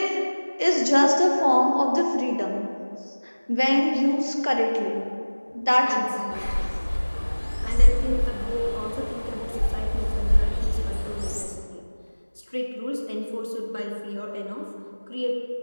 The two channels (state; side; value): inverted; both; correlation -1.00